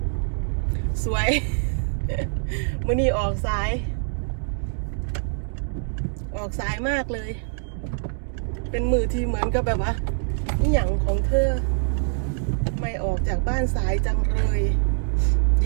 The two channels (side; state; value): left; silent; digital silence